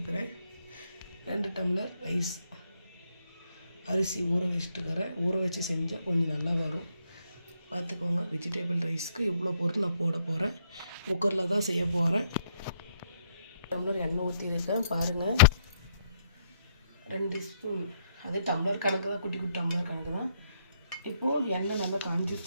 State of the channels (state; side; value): inverted; both; correlation -0.72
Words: 2 டம்ளர் ரைஸ் அரிசி ஊற வச்சுட்டுக்கிறேன். ஊற வச்சு செஞ்சால் கொஞ்சம் நல்லா வரும். பார்த்துக்கோங்க, வெஜிடேபிள் ரைஸ்க்கு இவ்வளோ பொருள் நான் போட போகிறேன். குக்கரில் தான் செய்ய போகிறேன். டம்ளர் எண்ணெய் ஊற்றிருக்கேன் பாருங்கள். 2 ஸ்பூன், அது டம்ளர் கணக்கு தான், குட்டி குட்டி டம்ளர் கணக்கு தான். இப்போது எண்ணெய் நல்லா